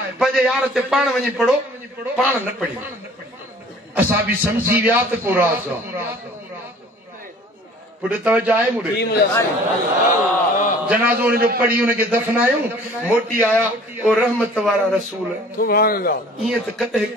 पंहिंजे यार ते पाण वञी पढ़ो पाण न पढ़ी असां बि सम्झी विया त को राज़ पुट तवज्जो आहे मुड़े जनाज़ो उनजो पढ़ी उनखे दफनायूं मोटी आया ओ रहमत वारा रसूल सुभान अल्लाह ईअं त कॾहिं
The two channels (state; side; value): normal; both; correlation 0.50